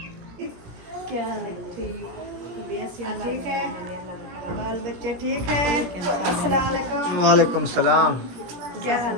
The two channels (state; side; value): late; left; 17 ms